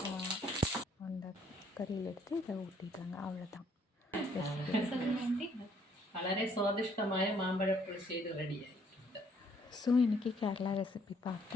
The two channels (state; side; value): normal; both; correlation 0.65